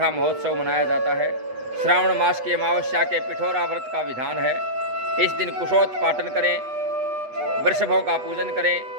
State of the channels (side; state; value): left; late; 8.3 ms